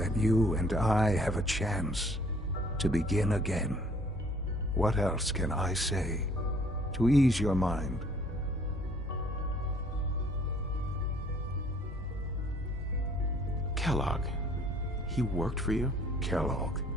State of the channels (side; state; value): both; normal; correlation 0.58